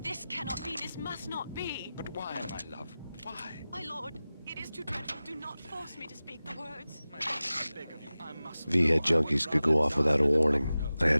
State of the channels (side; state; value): both; inverted; correlation -0.96